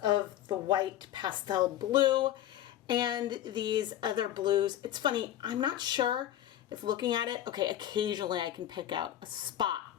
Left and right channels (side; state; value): right; quieter; 12.1 dB